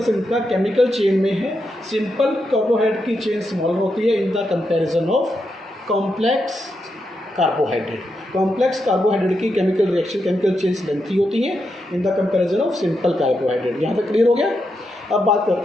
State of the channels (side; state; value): both; normal; correlation 0.84